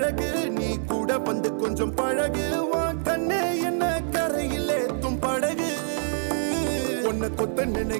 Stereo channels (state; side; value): silent; left; 61 dB below the other